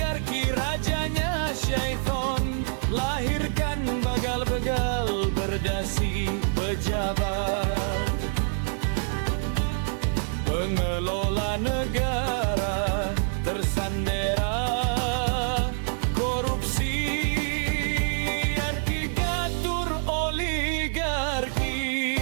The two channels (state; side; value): silent; left; digital silence